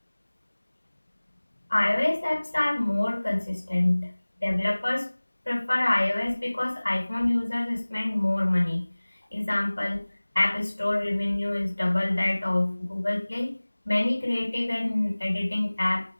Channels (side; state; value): both; inverted; correlation -1.00